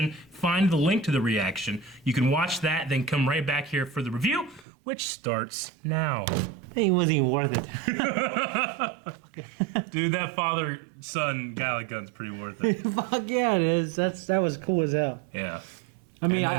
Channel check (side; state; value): left; drops out; at 4.7 s